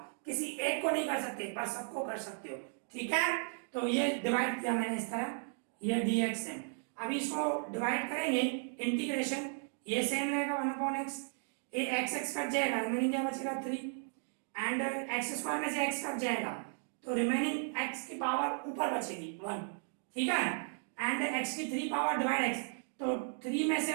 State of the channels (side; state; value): left; silent; 54 dB below the other